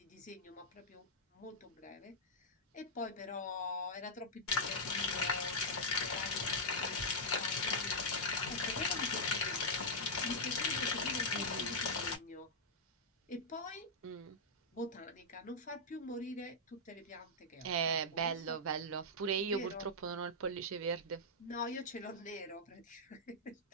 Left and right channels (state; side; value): normal; both; correlation -0.07